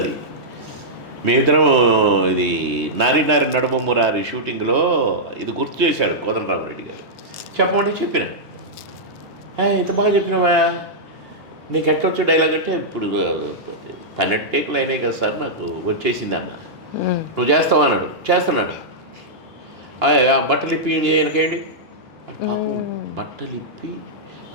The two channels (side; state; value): both; normal; correlation -0.10